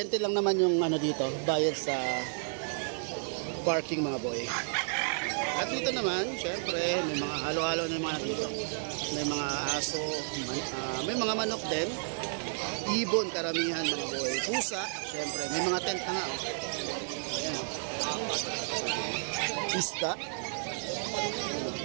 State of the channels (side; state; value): left; silent; digital silence